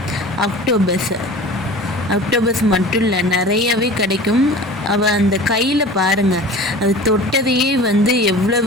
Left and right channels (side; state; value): both; normal; correlation 0.39